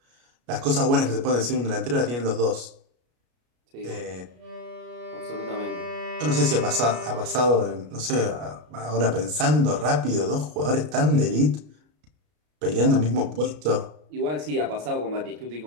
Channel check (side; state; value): left; late; 33 ms